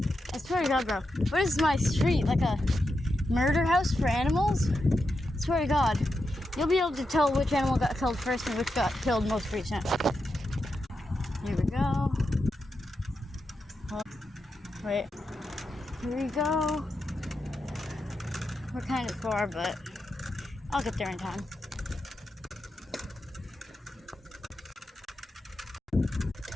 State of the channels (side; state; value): both; normal; correlation 0.87